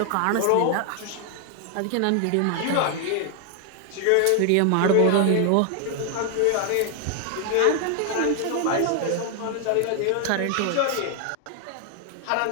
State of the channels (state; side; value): different; both; correlation 0.00